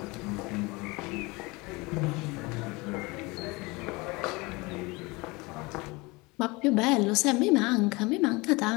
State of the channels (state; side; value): quieter; right; 24.7 dB